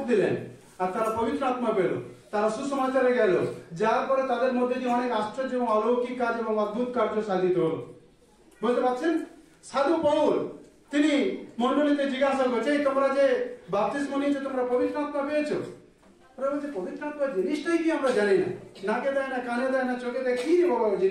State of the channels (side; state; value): both; identical; correlation 1.00